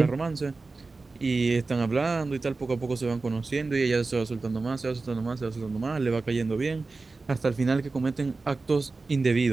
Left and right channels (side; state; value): left; quieter; 3.8 dB